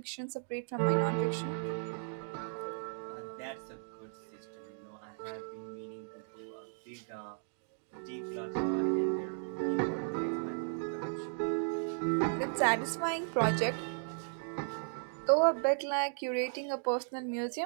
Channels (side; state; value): left; silent; digital silence